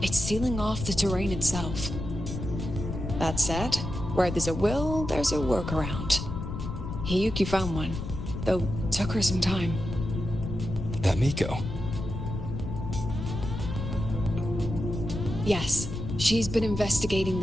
It's sealing off the terrain itself. That said, where there's a will, there's a workaround. Hiyuki found one, though took her some time. That Miko. Yes, she's been investigating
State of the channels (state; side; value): noise; left; rumble, 6 dB below the sound